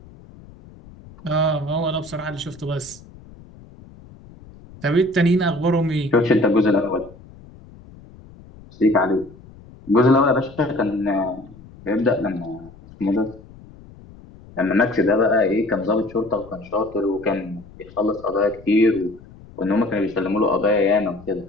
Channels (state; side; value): noise; left; rumble, 21 dB below the sound